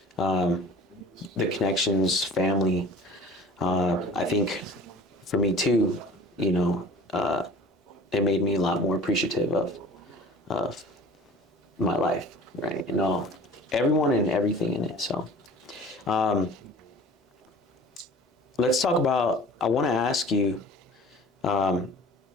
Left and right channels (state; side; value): normal; both; correlation 0.43